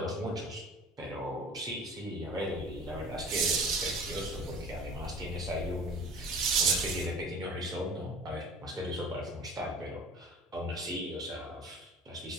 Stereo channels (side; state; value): both; normal; correlation 0.43